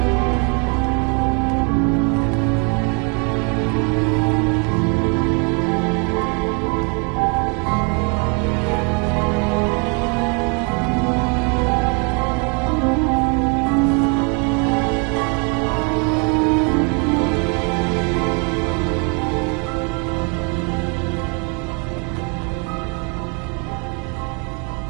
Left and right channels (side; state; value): left; quieter; 34.9 dB